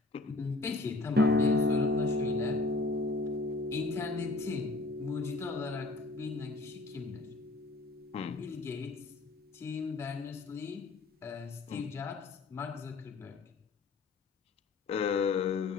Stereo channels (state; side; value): quieter; right; 3.3 dB